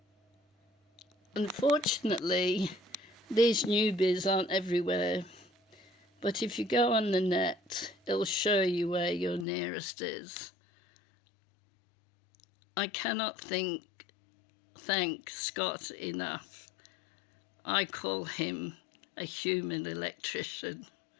Unfortunately, these newbies aren't everywhere. But if you go on the net, it'll show you where your nearest is. I cannot thank Scott enough. I call him a human electrician,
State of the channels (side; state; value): right; drops out; at 9.5 s